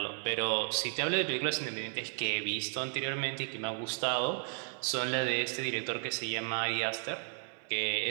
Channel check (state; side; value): silent; left; 55 dB below the other